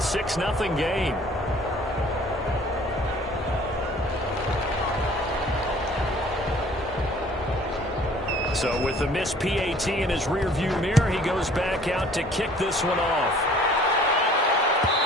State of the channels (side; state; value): both; normal; correlation 0.53